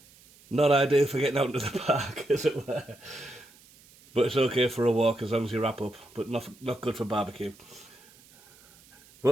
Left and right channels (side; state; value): right; noise; hiss, 26 dB below the sound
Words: not ideal for getting out into the park, as it were. But it's okay for a walk as long as you wrap up. But not good for barbecue.